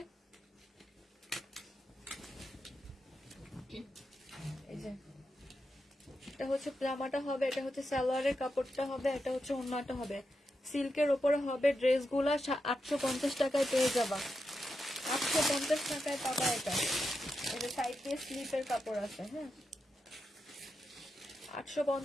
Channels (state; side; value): normal; both; correlation 0.87